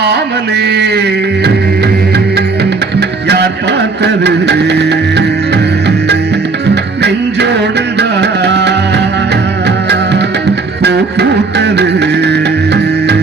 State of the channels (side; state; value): left; quieter; 4.0 dB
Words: யார் பார்த்தது, நெஞ்சோடுதான் பூ பூத்தது,